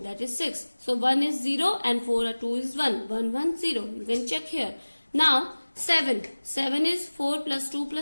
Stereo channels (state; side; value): inverted; both; correlation -1.00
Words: that is 6. So 1 is 0 and 4 or 2 is 1. 1, 1, 0. You can check here. Now 7. 7 is 4 plus 2